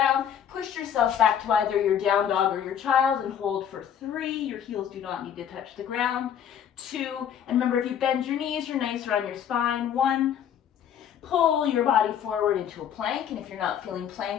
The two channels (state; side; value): quieter; right; 9.0 dB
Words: Push yourself back to either your down dog or your child and hold for 3. Your heels do not need to touch the ground. 2, and remember, if you bend your knees, you're nicer on your spine. 1, pull your body forward into a plank, and if you're not feeling